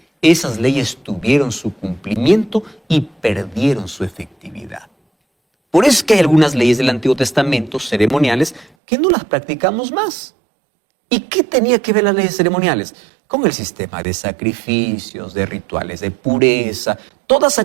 esas leyes tuvieron su cumplimiento y perdieron su efectividad. Por eso es que hay algunas leyes del Antiguo Testamento ceremoniales que no las practicamos más. ¿Y qué tenía que ver las leyes ceremoniales? Con el sistema de sacrificios, de rituales de pureza, todas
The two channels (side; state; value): left; drops out; at 8.7 s